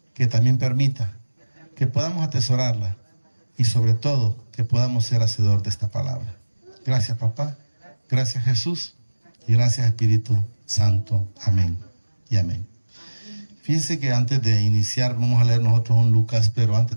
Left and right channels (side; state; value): both; inverted; correlation -1.00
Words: que también permita que podamos atesorarla y sobre todo que podamos ser hacedor de esta palabra. Gracias, papá. Gracias, Jesús. Y gracias, Espíritu Santo. Amén y amén. Fíjense que antes de iniciar, vamos a leer nosotros un Lucas, pero antes